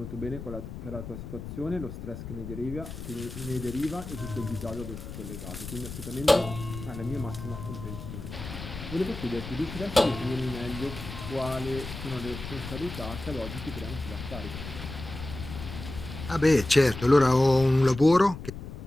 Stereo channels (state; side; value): noise; left; rumble, 10 dB below the sound